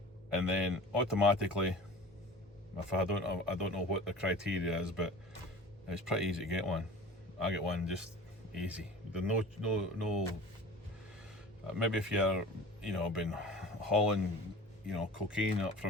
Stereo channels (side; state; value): both; normal; correlation 0.40